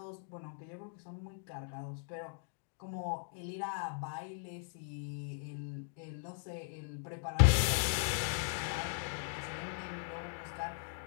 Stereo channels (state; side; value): silent; right; digital silence